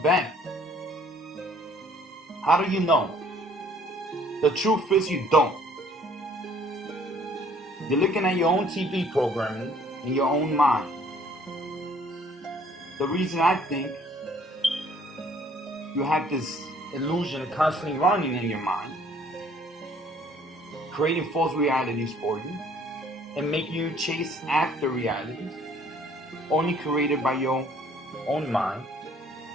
How do you know? The truth is you don't. You're looking at your own TV programming in your own mind. The reason I think you have this illusion constantly running in your mind, creating false realities for you, and making you chase after realities only created by your own mind,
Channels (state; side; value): normal; both; correlation 0.58